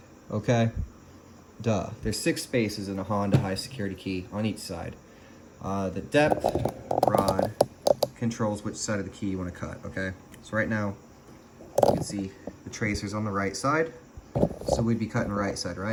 okay? Duh. There's 6 spaces in a Honda high security key on each side. The depth rod controls which side of the key you want to cut, okay? So right now, you can see the tracer's on the right side, so we'd be cutting right side,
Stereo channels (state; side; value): identical; both; correlation 1.00